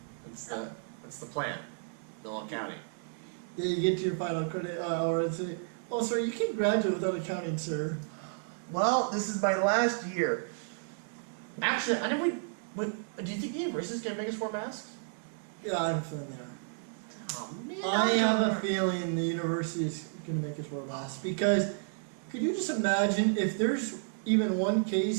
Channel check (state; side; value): silent; left; digital silence